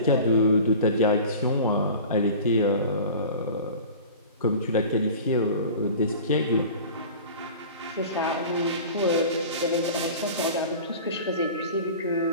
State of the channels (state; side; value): inverted; both; correlation -0.38